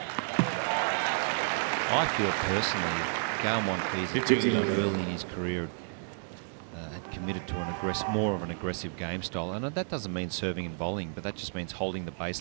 I feel personally, if Gael Monfils early in his career had committed to more of an aggressive game style, and that doesn't mean serving and volleying, but that just means holding the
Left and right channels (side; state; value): left; silent; 57 dB below the other